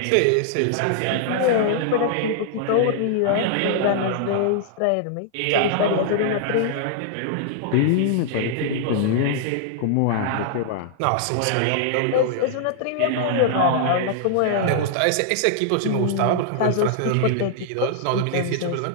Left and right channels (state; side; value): different; both; correlation -0.01